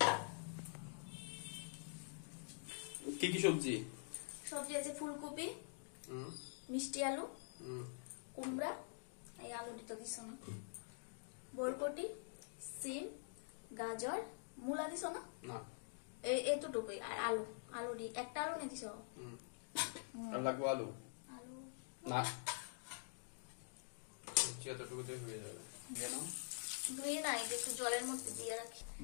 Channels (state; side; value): silent; right; digital silence